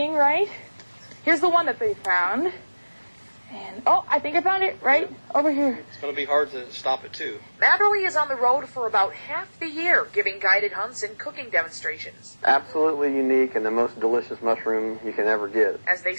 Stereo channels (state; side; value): inverted; both; correlation -1.00